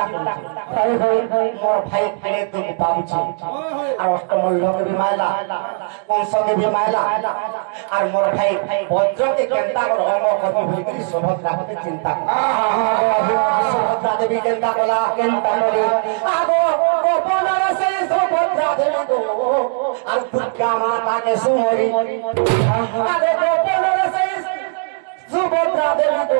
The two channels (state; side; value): silent; left; digital silence